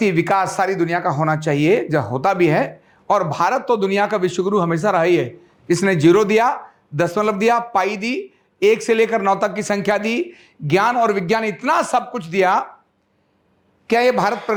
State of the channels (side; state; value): both; identical; correlation 1.00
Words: विकास सारी दुनिया का होना चाहिए, जो होता भी है। और भारत तो दुनिया का विश्वगुरु हमेशा रहा ही है। इसने जीरो दिया, दशमलव दिया, पाई दी, 1 से लेकर 9 तक की संख्या दी, ज्ञान और विज्ञान, इतना सब कुछ दिया। क्या यह भारत